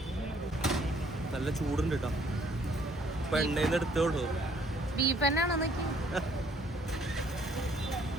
നല്ല ചൂടുണ്ട് കേട്ടോ. ഇപ്പൊ എണ്ണയിൽ നിന്ന് എടുത്തോളൂ. ബീഫ് തന്നെയാണോ നോക്കി?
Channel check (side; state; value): both; normal; correlation 0.63